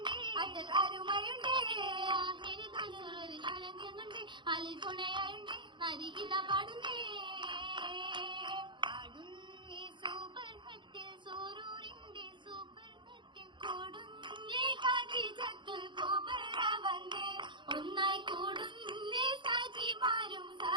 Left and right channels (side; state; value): left; late; 0.23 ms